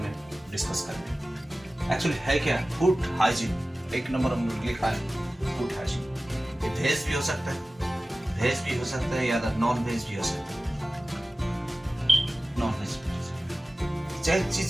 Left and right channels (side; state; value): both; normal; correlation 0.96